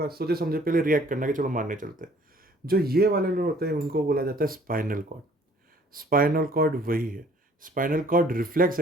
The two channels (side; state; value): both; normal; correlation 0.57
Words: सोचे समझे पहले रिएक्ट करना कि चलो मारने चलते हैं। जो ये वाले लोग होते हैं उनको बोला जाता है स्पाइनल कॉर्ड। स्पाइनल कॉर्ड वही है। स्पाइनल कॉर्ड रिफ्लेक्स